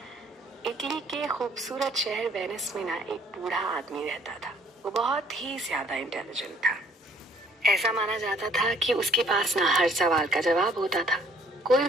इटली के खूबसूरत शहर वेनिस में ना एक बूढ़ा आदमी रहता था। वो बहुत ही ज्यादा इंटेलिजेंट था। ऐसा माना जाता था कि उसके पास ना हर सवाल का जवाब होता था। कोई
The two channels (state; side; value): normal; both; correlation 0.59